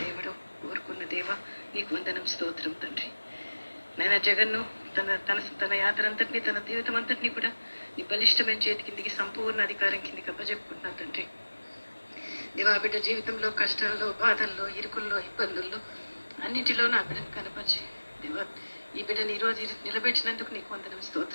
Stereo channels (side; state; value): both; inverted; correlation -1.00